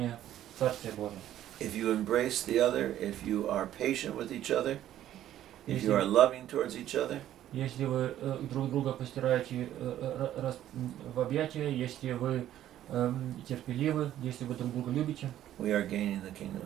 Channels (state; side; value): quieter; left; 12.2 dB